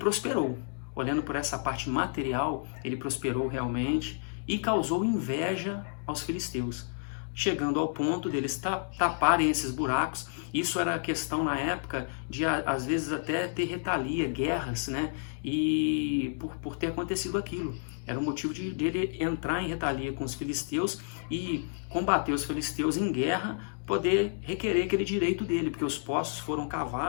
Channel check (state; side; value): silent; right; digital silence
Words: Olhando por essa parte material, ele prosperou realmente e causou inveja aos filisteus, chegando ao ponto deles taparem esses buracos. Isso era questão na época de, às vezes, até ter retalia, guerras, né? E por ter acontecido aquilo. Era o motivo de ele entrar em retalia com os filisteus e combater os filisteus em guerra poder requerer aquele direito dele, porque os poços foram